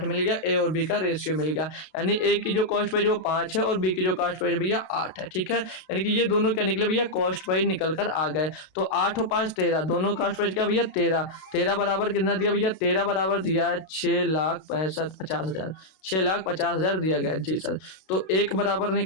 मिल गया, ए और बी का रेशियो मिल गया। यानी ए की जो कॉस्ट प्राइस वो 5 है और बी की जो कॉस्ट प्राइस भैया 8 है, ठीक है। यानी कि ये दोनों क्या निकले भैया, कॉस्ट प्राइस निकल कर आ गए। तो 8 और 5 13, दोनों कॉस्ट प्राइस क्या भैया 13। 13 बराबर कितना दिया भैया, 13 बराबर दिया है 6,65,000, 6,50,000 दिया गया। जी सर। तो एक बराबर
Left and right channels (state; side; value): late; right; 32 ms